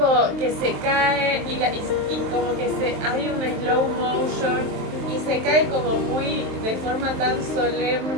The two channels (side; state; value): left; late; 23 ms